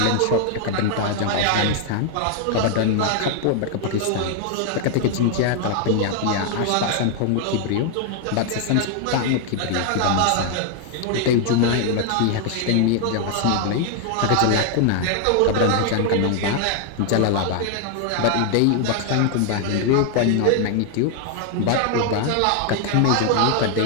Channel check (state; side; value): different; both; correlation 0.00